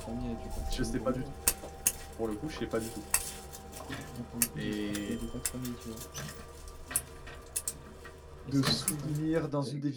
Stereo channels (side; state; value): both; identical; correlation 1.00